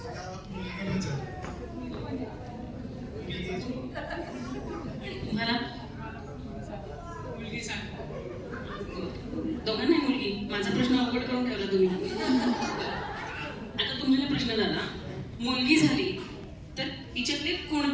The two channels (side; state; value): both; identical; correlation 1.00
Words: तुम्हाला मुलगी सांग. दोघांना मुलगी. माझा प्रश्न अवघड करून ठेवला तुम्ही. आता तुम्हाला प्रश्न झाला, मुलगी झाली तर तिच्यातले